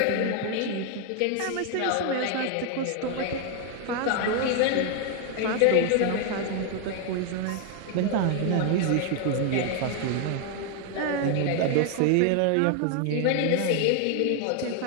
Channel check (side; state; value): both; different; correlation 0.00